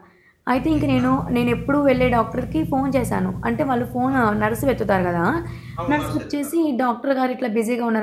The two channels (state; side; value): identical; both; correlation 1.00